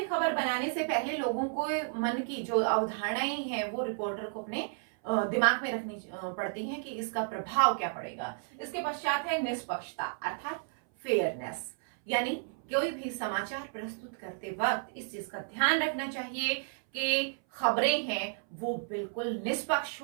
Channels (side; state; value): left; silent; 56 dB below the other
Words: खबर बनाने से पहले लोगों को मन की जो अवधारणाएं हैं वो रिपोर्टर को अपने दिमाग में रखनी पड़ती हैं कि इसका प्रभाव क्या पड़ेगा। इसके पश्चात है निष्पक्षता अर्थात फेयरनेस, यानी कोई भी समाचार प्रस्तुत करते वक्त इस चीज का ध्यान रखना चाहिए कि खबरें हैं वो बिल्कुल निष्पक्ष